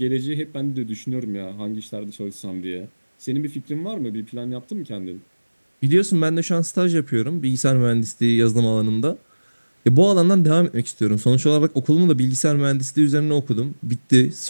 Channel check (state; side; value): inverted; both; correlation -1.00